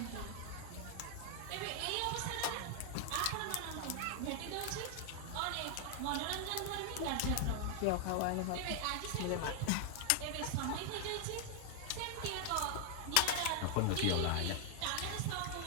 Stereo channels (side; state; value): both; different; correlation 0.00